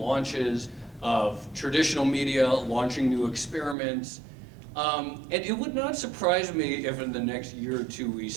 of traditional media launching new experiments. And it would not surprise me if in the next year or two we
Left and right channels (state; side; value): drops out; left; at 3.8 s